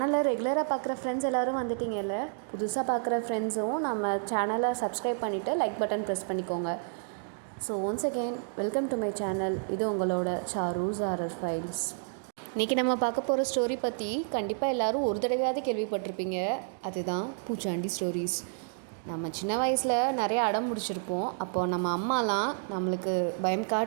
ரெகுலராக பார்க்குற ஃப்ரெண்ட்ஸ் எல்லோரும் வந்துட்டிங்கல்ல, புதுசாக பார்க்குற ஃப்ரெண்ட்ஸும் நம்ம சேனலை சப்ஸ்கிரைப் பண்ணிவிட்டு லைக் பட்டன் ப்ரெஸ் பண்ணிக்கோங்க. So once again welcome to my channel. இது உங்களோட சாரூஸ் ஹாரர் ஃபைல்ஸ். இன்றைக்கி நம்ம பார்க்க போகிற ஸ்டோரி பற்றி கண்டிப்பாக எல்லோரும் ஒரு தடவையாவது கேள்விப்பட்டிருப்பீங்க. அதுதான் பூச்சாண்டி ஸ்டோரிஸ். நம்ம சின்ன வயசில் நிறைய அடம் முடிச்சிருப்போம். அப்போது நம்ம அம்மாலாம் நம்மளுக்கு பயம்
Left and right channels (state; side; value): silent; left; digital silence